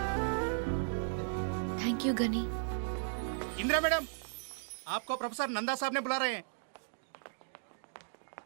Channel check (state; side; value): silent; left; digital silence